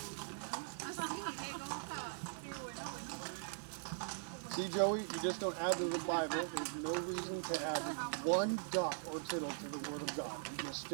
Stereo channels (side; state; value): left; silent; 50 dB below the other